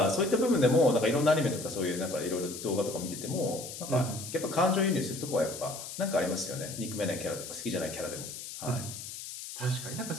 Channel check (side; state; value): left; noise; hiss, 10 dB below the sound